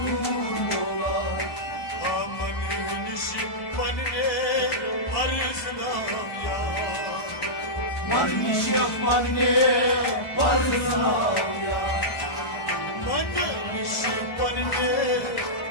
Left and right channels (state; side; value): late; right; 1.7 ms